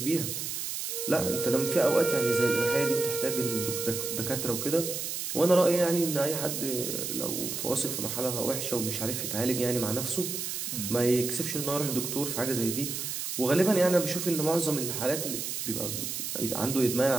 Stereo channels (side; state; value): right; noise; hiss, 4 dB below the sound